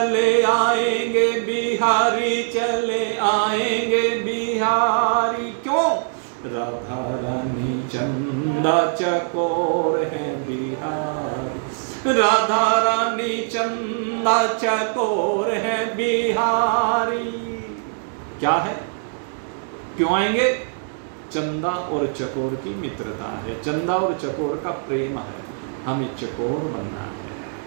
आएंगे बिहारी, चले आएंगे बिहारी। क्यों? राधा रानी चंदा चकोर है बिहारी, राधा रानी चंदा चकोर है बिहारी। क्या है? क्यों आएंगे? चंदा और चकोर की मित्रता है, चंदा और चकोर का प्रेम है, हमें चकोर बनना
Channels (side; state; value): left; silent; digital silence